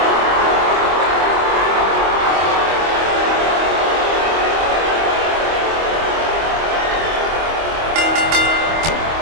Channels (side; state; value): left; late; 25 ms